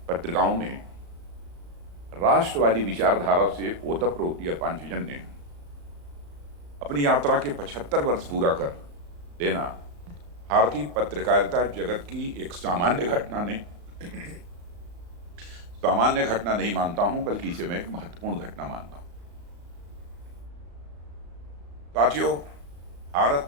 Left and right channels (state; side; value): late; left; 35 ms